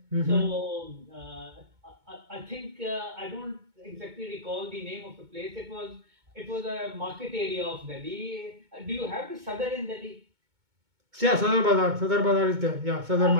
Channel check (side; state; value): left; late; 2.2 ms